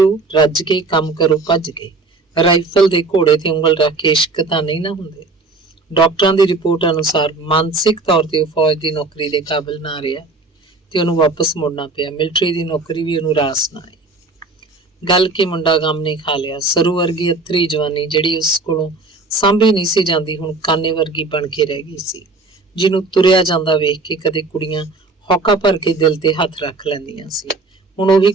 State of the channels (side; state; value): left; quieter; 3.5 dB